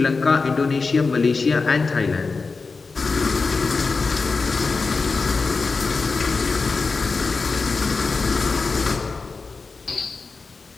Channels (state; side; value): quieter; right; 4.3 dB